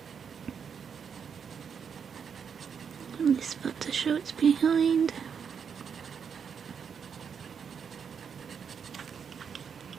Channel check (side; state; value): left; quieter; 6.9 dB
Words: And this foot to show it's behind.